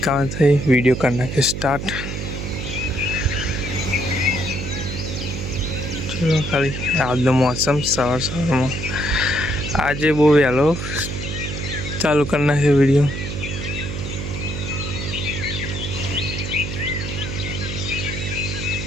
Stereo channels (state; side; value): noise; right; hum, 5 dB below the sound